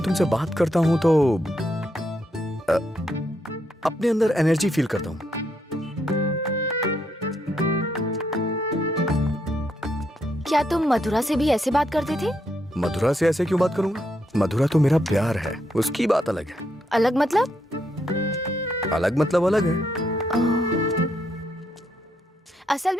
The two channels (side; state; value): both; normal; correlation 0.78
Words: तुमसे बात करता हूँ तो अपने अंदर एनर्जी फील करता हूँ। क्या तुम मधुरा से भी ऐसे बात करते थे? मधुरा से ऐसे क्यों बात करूंगा? मधुरा तो मेरा प्यार है, उसकी बात अलग है। अलग मतलब? अलग मतलब अलग है। असल